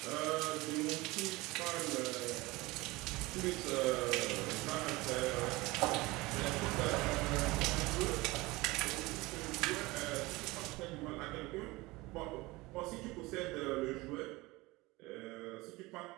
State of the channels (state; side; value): quieter; left; 21.7 dB